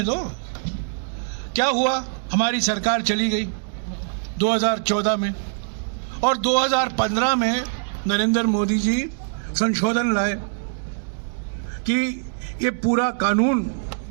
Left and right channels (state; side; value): silent; left; digital silence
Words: दो। क्या हुआ, हमारी सरकार चली गई 2014 में, और 2015 में नरेंद्र मोदी जी संशोधन लाए कि ये पूरा कानून